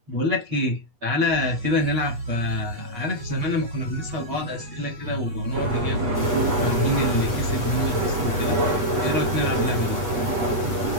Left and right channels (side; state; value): left; late; 8.3 ms